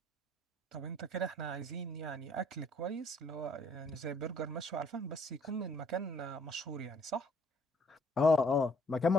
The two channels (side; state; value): both; normal; correlation 0.62